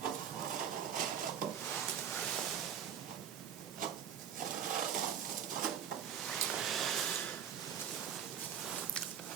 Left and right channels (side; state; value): left; quieter; 8.5 dB